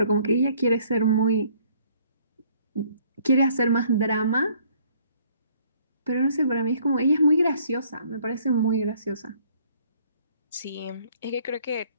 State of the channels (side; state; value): both; inverted; correlation -0.61